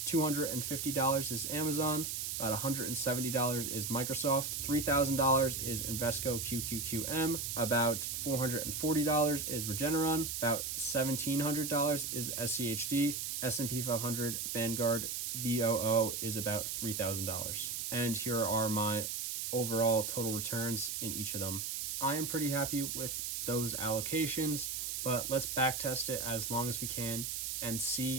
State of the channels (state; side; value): noise; right; hiss, 3 dB below the sound